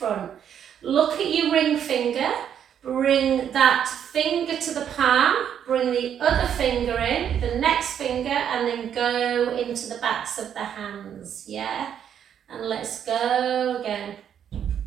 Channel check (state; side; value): quieter; left; 9.0 dB